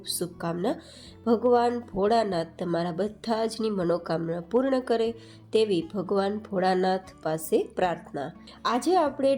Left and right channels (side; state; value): both; identical; correlation 1.00